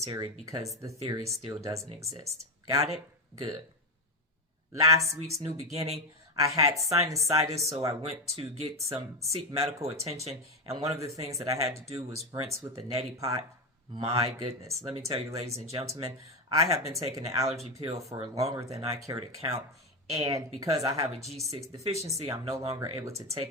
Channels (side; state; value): both; normal; correlation 0.12